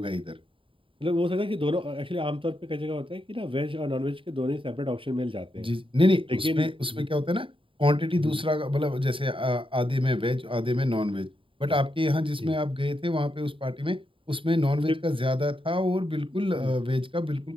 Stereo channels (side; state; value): left; late; 0.25 ms